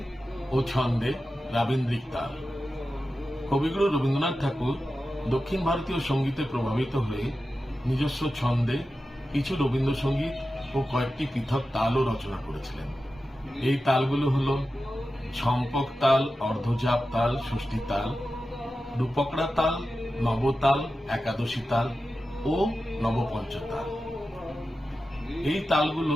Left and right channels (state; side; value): normal; both; correlation 0.92